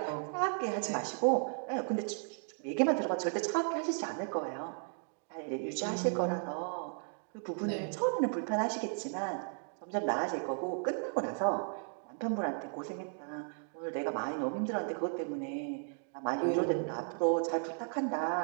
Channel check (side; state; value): left; silent; 54 dB below the other